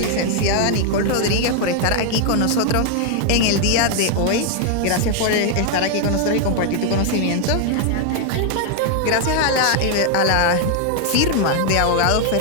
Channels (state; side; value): different; both; correlation 0.00